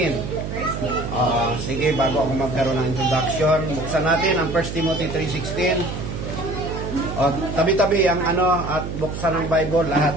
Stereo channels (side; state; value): right; noise; hum, 6 dB below the sound